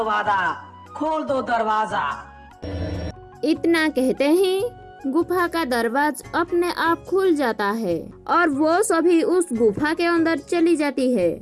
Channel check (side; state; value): both; identical; correlation 1.00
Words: वादा, खोल दो दरवाजा। इतना कहते ही गुफा का दरवाजा अपने आप खुल जाता है और वो सभी उस गुफा के अंदर चली जाती है